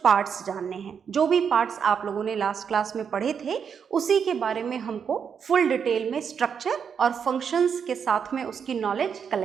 पार्ट्स जानने हैं। जो भी पार्ट्स आप लोगों ने लास्ट क्लास में पढ़े थे उसी के बारे में हमको फुल डिटेल में स्ट्रक्चर और फंक्शंस के साथ में उसकी नॉलेज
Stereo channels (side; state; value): left; quieter; 7.0 dB